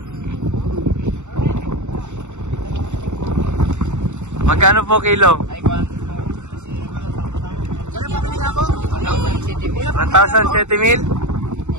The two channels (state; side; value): late; left; 0.84 ms